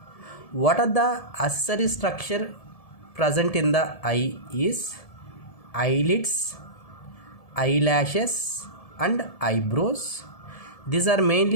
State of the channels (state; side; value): late; right; 1.7 ms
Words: What are the accessory structure present in the eye is eyelids, eyelashes and eyebrows. These are